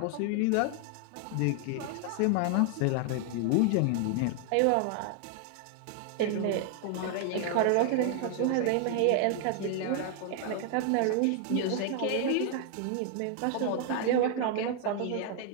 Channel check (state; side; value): different; both; correlation 0.00